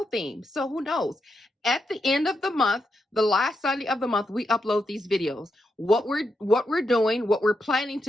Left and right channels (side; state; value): both; normal; correlation 0.84